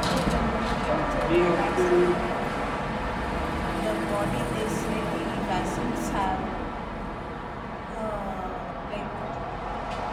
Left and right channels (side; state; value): both; identical; correlation 1.00